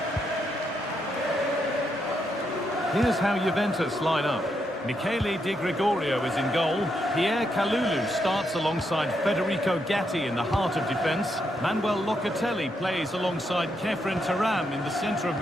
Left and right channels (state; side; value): normal; both; correlation 0.80